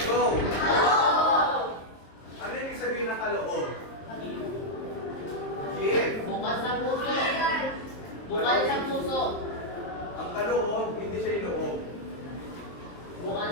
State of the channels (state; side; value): late; right; 23 ms